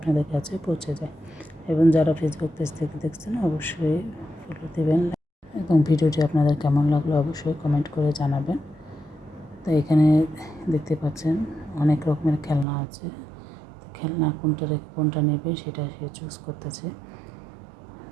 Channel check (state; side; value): drops out; left; at 12.7 s